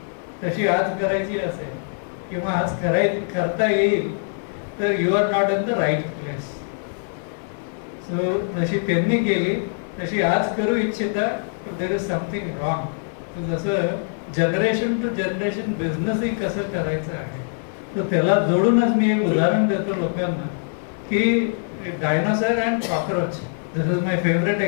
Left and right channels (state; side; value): silent; right; digital silence